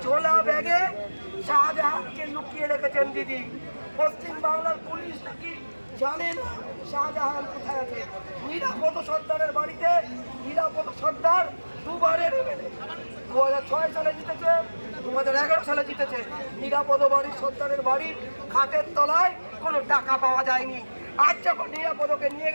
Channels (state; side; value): inverted; both; correlation -1.00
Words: ছোলা ব্যাগে শাহজাহানকে লুকিয়ে রেখেছেন দিদি। পশ্চিম বাংলার পুলিশ নাকি জানে না শাহজাহান কোথায় আছে। নিরাপদ সর্দারের বাড়িতে নিরাপদ সর্দার দুবারের এমএলএ, 2006 সালে জিতেছে, 2011 সালে জিতেছে। নিরাপদ বাড়ির সর্দারের বাড়ির খাটের তলায় কোনো টাকা পাওয়া যায়নি। আজ যখন নিরাপদকে নিয়ে